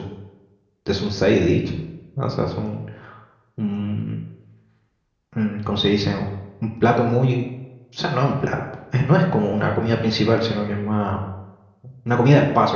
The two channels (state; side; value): identical; both; correlation 1.00